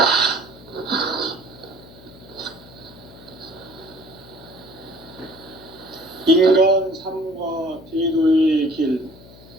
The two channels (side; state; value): left; noise; hum, 20 dB below the sound